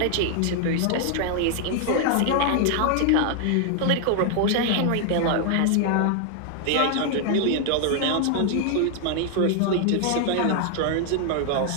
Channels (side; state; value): both; different; correlation 0.00